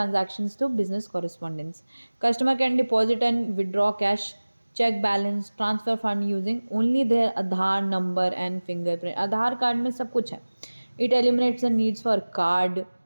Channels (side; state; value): both; inverted; correlation -1.00